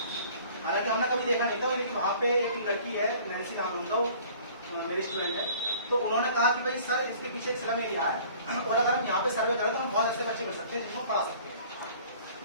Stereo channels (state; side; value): inverted; both; correlation -0.50